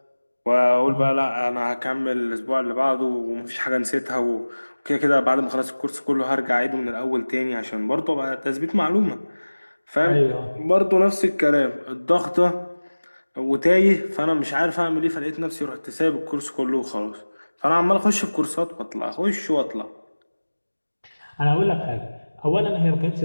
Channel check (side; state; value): both; inverted; correlation -1.00